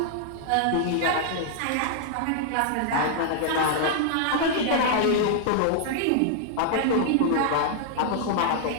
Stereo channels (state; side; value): different; both; correlation -0.01